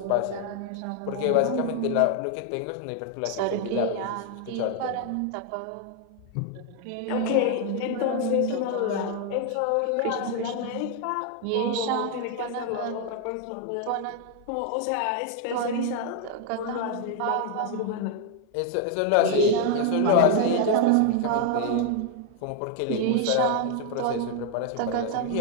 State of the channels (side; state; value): both; different; correlation 0.00